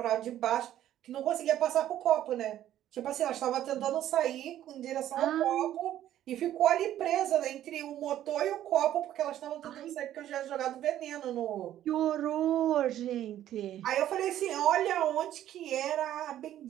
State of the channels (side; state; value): left; quieter; 12.1 dB